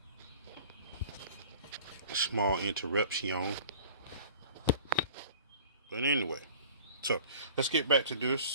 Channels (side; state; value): both; inverted; correlation -0.45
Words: small interruption. But anyway, so let's get back to